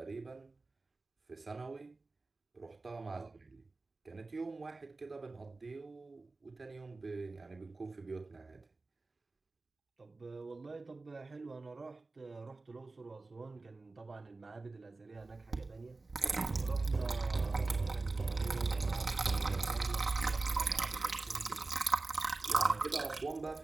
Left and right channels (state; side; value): quieter; left; 3.5 dB